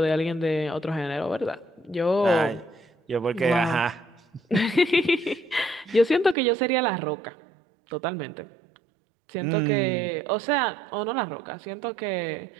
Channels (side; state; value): left; drops out; at 6.4 s